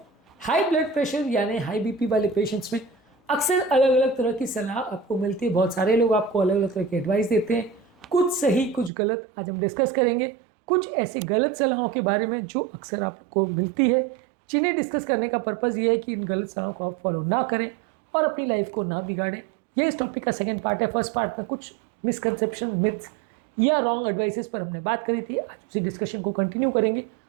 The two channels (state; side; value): drops out; left; at 8.9 s